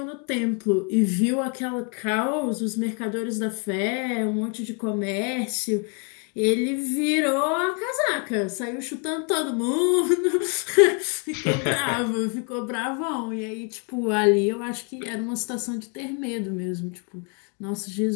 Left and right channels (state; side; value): quieter; right; 37.4 dB